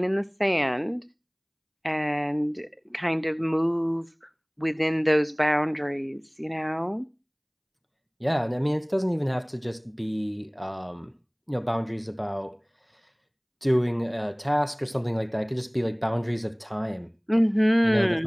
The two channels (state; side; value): identical; both; correlation 1.00